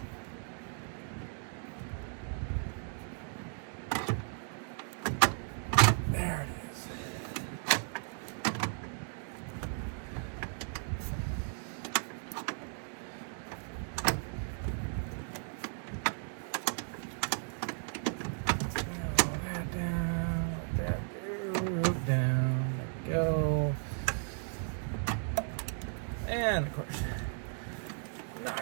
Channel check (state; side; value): silent; left; 54 dB below the other